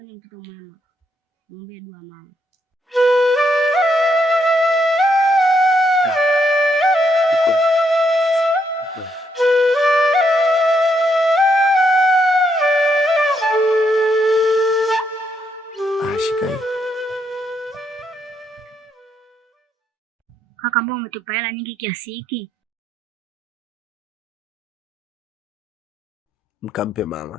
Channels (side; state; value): both; normal; correlation 0.76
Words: ni mtoto mwema, muombe dua mama. Shika hii. Kaka, mbona umetupa hela nyingi kiasi hiki? Mkampe